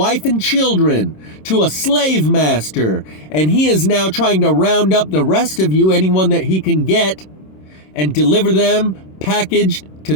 and children, to a slave master, and he is now trying to round up the rest of you, anyone that he can get, and deliver them packaged to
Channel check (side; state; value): right; late; 26 ms